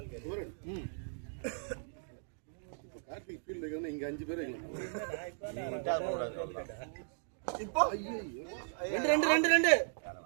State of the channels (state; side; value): silent; left; digital silence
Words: இப்போ கார்த்திக் ஃபீல்ட் இருக்கணும் இங்க 5 பேர் இருக்கலாம். நீ விட்டா போடாது. இப்போ 2